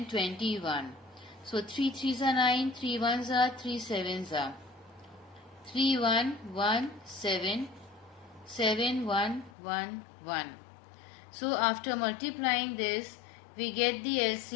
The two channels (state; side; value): drops out; right; at 9.5 s